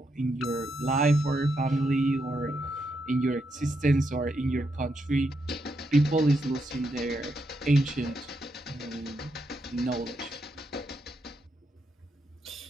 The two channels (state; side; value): normal; both; correlation 0.81